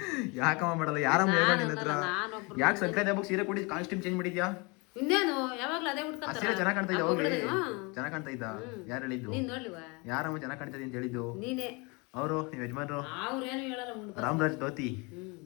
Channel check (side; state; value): right; quieter; 28.8 dB